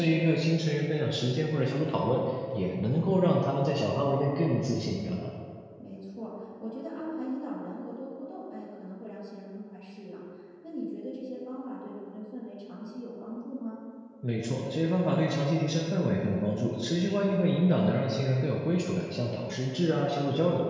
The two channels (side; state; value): both; identical; correlation 1.00